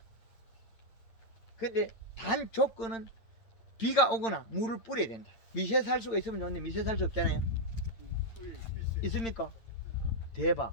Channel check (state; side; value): late; right; 8.8 ms